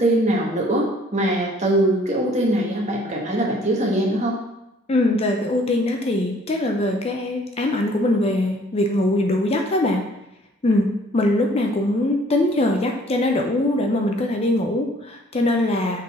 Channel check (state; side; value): normal; both; correlation 0.58